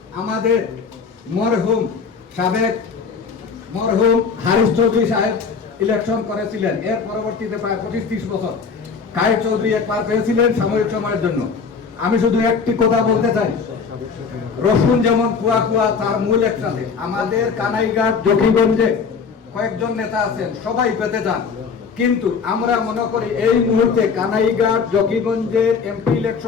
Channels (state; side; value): quieter; right; 5.6 dB